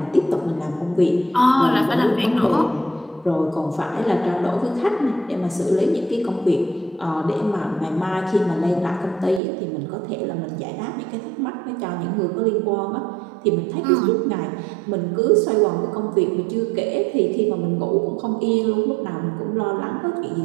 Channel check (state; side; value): drops out; left; at 9.4 s